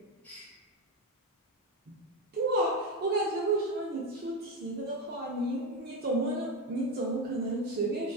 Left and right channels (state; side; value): normal; both; correlation 0.14